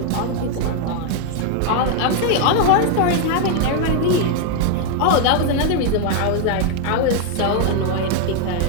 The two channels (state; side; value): different; both; correlation 0.00